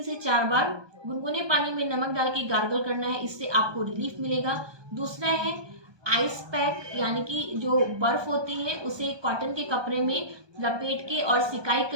से 4 बार गुनगुने पानी में नमक डाल के गार्गल करना है, इससे आपको रिलीफ मिलेगा। दूसरा है आइस पैक, यानी कि जो बर्फ होती है उसे कॉटन के कपड़े में लपेट के और सिकाई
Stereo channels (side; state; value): left; late; 1.2 ms